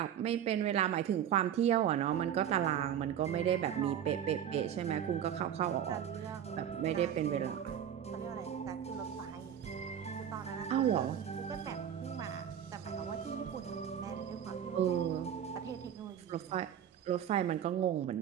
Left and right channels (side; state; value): left; quieter; 9.5 dB